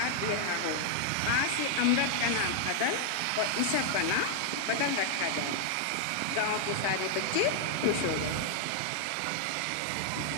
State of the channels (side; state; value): both; different; correlation 0.00